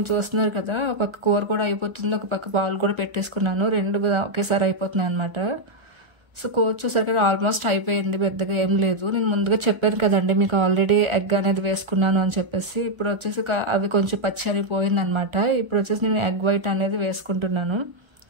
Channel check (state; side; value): late; left; 1.4 ms